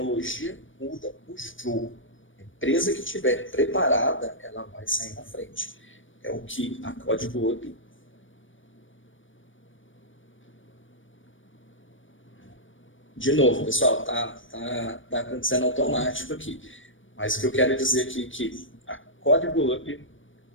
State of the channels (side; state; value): right; late; 0.57 ms